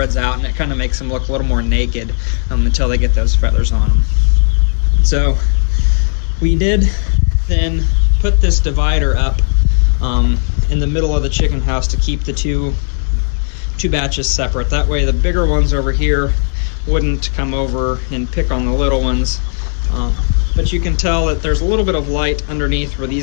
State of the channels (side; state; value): right; silent; digital silence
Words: out and it kind of makes them look a little more naked until they get those feathers on them. So we did then put this divider up in the middle of the chicken house to keep the two batches separate. That way the bigger ones over here wouldn't come over and pick on the little ones. But you can tell that there's a little bit of light underneath where